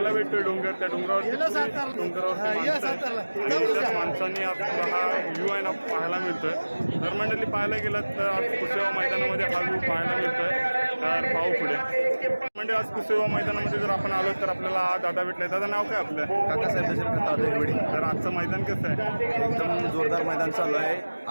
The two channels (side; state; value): both; inverted; correlation -1.00